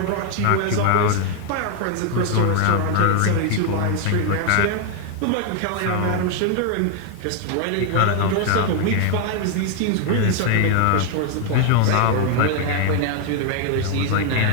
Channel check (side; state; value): both; different; correlation 0.00